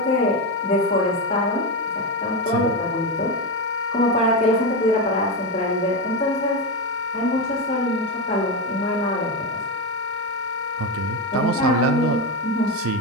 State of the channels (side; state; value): both; normal; correlation 0.13